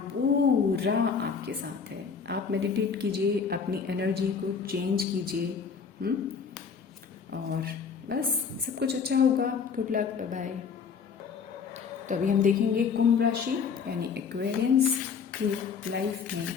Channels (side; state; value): right; quieter; 6.0 dB